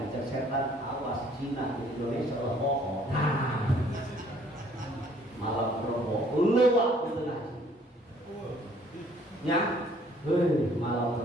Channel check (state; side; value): normal; both; correlation 0.60